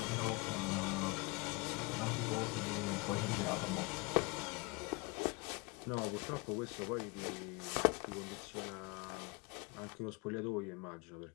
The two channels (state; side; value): quieter; right; 26.3 dB